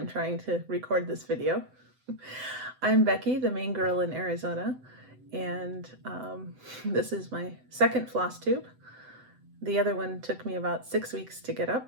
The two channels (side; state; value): left; late; 7.9 ms